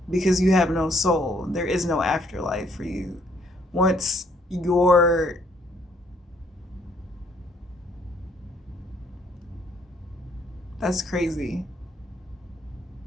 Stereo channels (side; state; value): both; normal; correlation 0.67